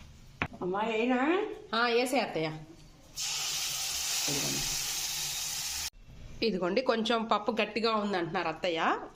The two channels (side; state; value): both; identical; correlation 1.00